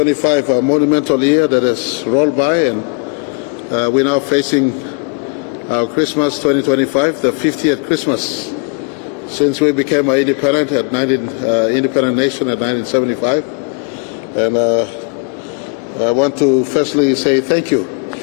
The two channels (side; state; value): right; quieter; 35.2 dB